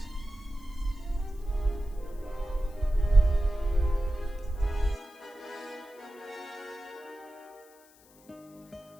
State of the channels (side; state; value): left; noise; hiss, 27 dB below the sound